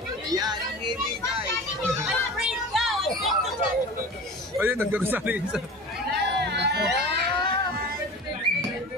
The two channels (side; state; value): both; normal; correlation 0.35